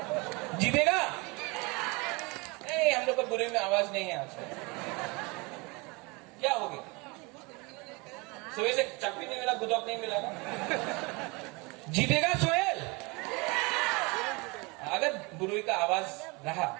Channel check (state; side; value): quieter; left; 27.1 dB